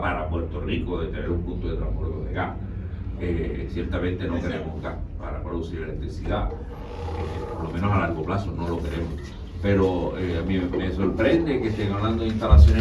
para Puerto Rico de tener un punto de transbordo de gas. Ciertamente no queremos gas para producir electricidad, por lo menos a largo plazo no lo queremos. Pero a mí me sorprende que estén hablando de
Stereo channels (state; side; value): identical; both; correlation 1.00